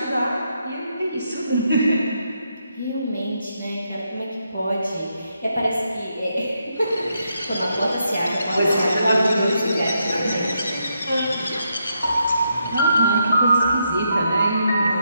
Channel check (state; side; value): inverted; both; correlation -0.80